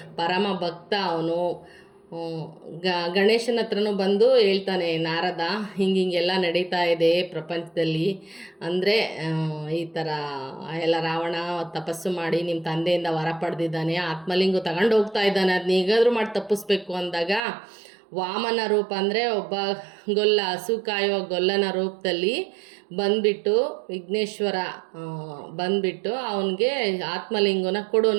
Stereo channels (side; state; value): left; drops out; at 17.4 s